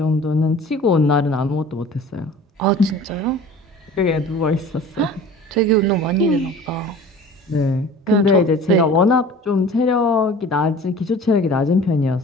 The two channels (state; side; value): normal; both; correlation 0.43